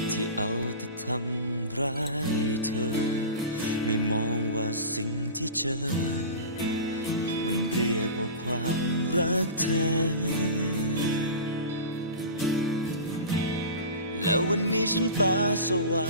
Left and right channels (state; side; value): inverted; both; correlation -0.32